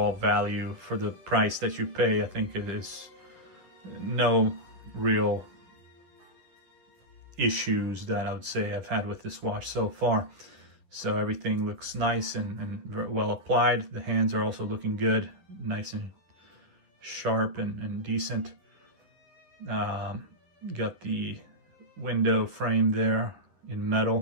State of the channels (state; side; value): late; left; 10 ms